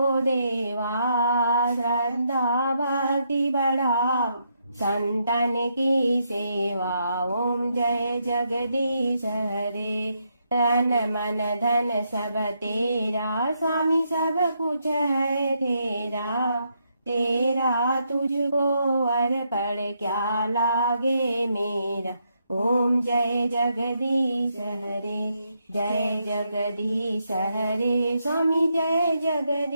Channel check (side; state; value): both; inverted; correlation -0.78